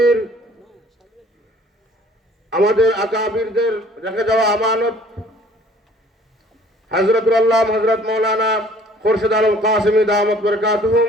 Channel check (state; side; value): normal; both; correlation 0.54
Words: আমাদের আকাবিরদের রেখে যাওয়া আমানত হযরতুল আল্লাহ হযরত মাওলানা খুরশিদ আলম কাসেমী দামাত বরকাতুহুম